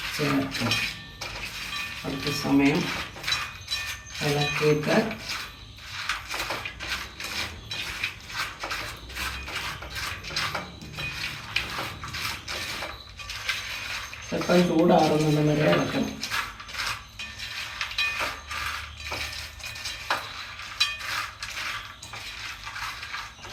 ചേർക്കുക. കുറച്ച് സമയം ഇളക്കിയിട്ട് സ്വല്പം ചൂടാറുന്നത് വരെ ഇളക്കണം.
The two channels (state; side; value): identical; both; correlation 1.00